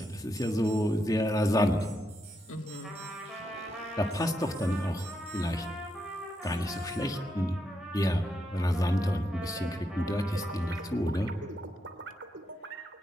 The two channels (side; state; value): both; normal; correlation 0.82